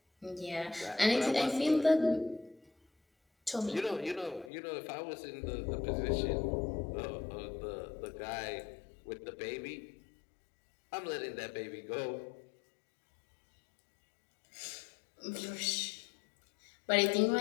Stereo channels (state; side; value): drops out; right; at 4.5 s